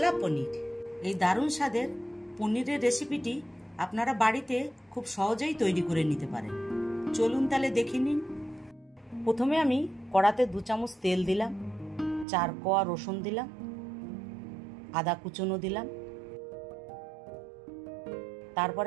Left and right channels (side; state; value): left; drops out; at 12.2 s